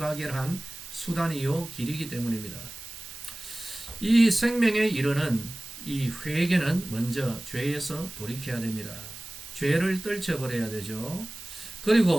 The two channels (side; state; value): right; noise; hiss, 13 dB below the sound